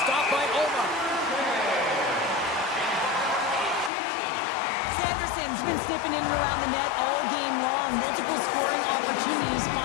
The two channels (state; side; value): drops out; right; at 3.9 s